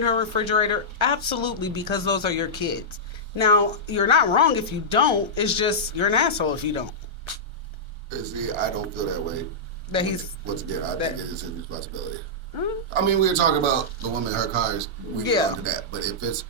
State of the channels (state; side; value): late; left; 1.3 ms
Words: her refrigerator? Absolutely, because those are your kids. Now, you're not wrong if you don't. It's just you're an asshole if you don't. See, I don't feel that way. That he's Once again, I think it is his responsibility. Mm-hmm. I mean, we were talking about the woman in her cars. We can Yeah. get into that. But if it's